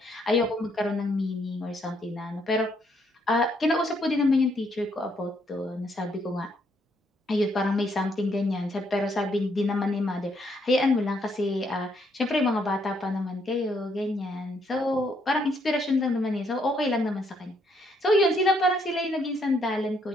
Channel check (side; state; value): both; normal; correlation 0.72